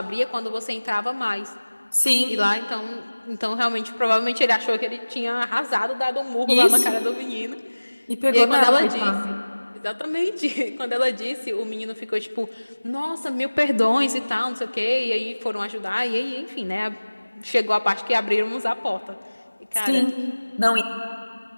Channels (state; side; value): inverted; both; correlation -1.00